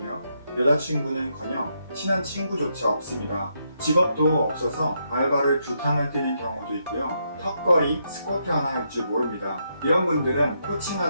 여자친구는커녕 친한 친구조차 없습니다. 직업도 없어서 알바를 2탕을 뛰는 경우도 있고요. 턱걸이, 스쿼트 하나 할 줄 모릅니다. 이런 분들은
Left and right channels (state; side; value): inverted; both; correlation -0.79